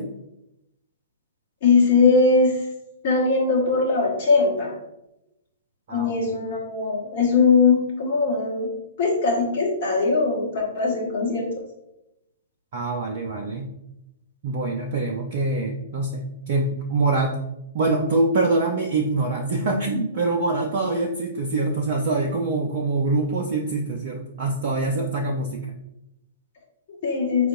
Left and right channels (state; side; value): inverted; both; correlation -0.39